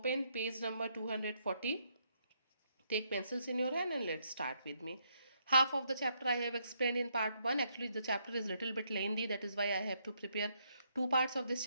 page number 240. Take pencils in your hand and let's start with me. Half of the chapter I have explained in part 1. Actually, the chapter is a little bit lengthy. That is why I have to prepare 2 parts of this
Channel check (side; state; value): both; inverted; correlation -0.75